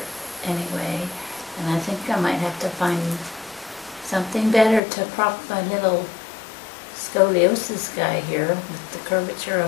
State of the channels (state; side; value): drops out; right; at 4.8 s